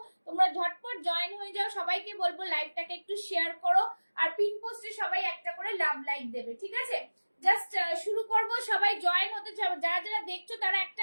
তোমরা ঝটপট জয়েন হয়ে যাও, সবাইকে বলবো লাইভটাকে একটু শেয়ার করো, আর পিন পোস্টে সবাই একটা করে লাভ লাইক দেবে, ঠিক আছে? জাস্ট শুরু করব, সবাই জয়েন হতে চাও, যারা যারা দেখছো তারা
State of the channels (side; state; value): both; inverted; correlation -1.00